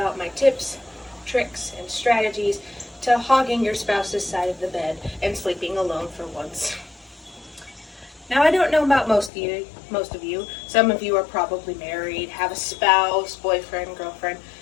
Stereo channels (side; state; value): right; drops out; at 9.3 s